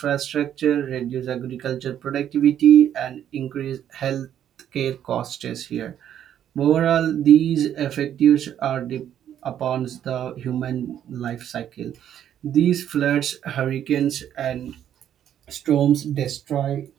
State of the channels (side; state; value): left; quieter; 10.2 dB